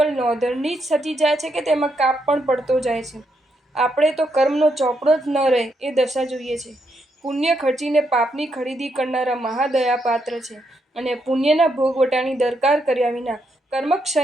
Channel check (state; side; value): normal; both; correlation 0.79